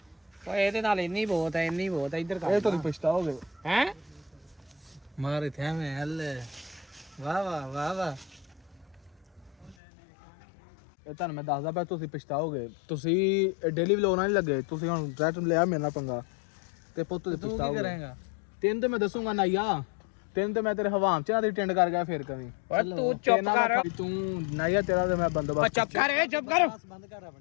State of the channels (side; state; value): right; drops out; at 9.8 s